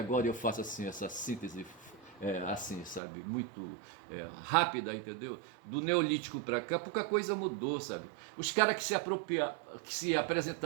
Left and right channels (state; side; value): drops out; left; at 3.0 s